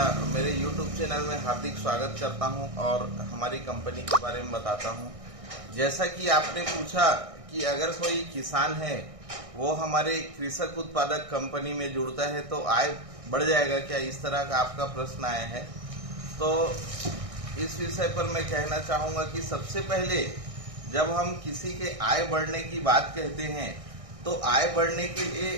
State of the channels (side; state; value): left; late; 1.6 ms